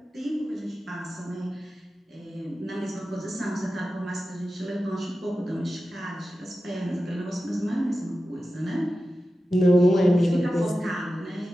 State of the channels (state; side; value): normal; both; correlation 0.93